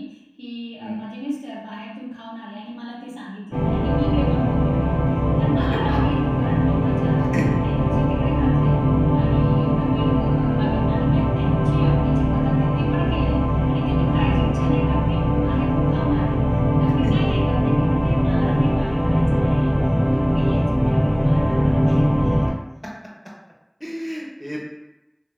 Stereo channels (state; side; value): identical; both; correlation 1.00